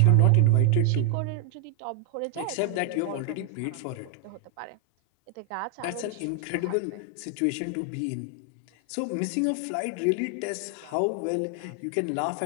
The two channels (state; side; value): different; both; correlation 0.00